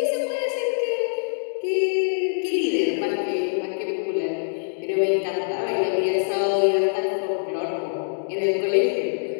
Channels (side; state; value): right; silent; digital silence